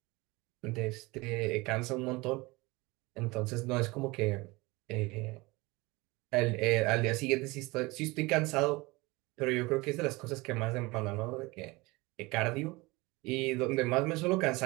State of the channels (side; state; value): left; quieter; 23.2 dB